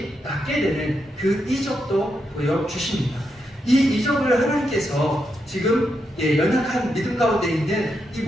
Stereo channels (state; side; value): normal; both; correlation 0.83